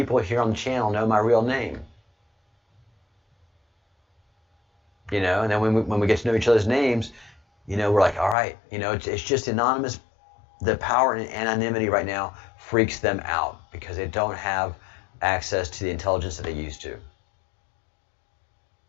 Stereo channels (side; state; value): right; drops out; at 8.3 s